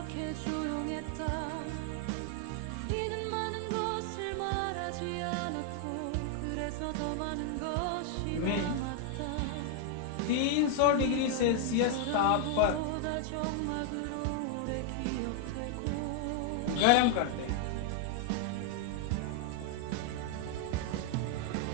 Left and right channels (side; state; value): both; different; correlation 0.00